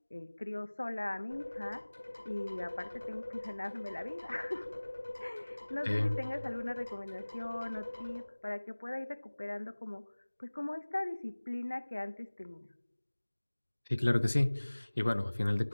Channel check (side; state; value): both; inverted; correlation -1.00